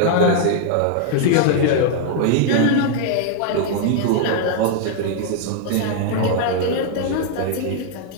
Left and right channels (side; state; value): both; different; correlation 0.00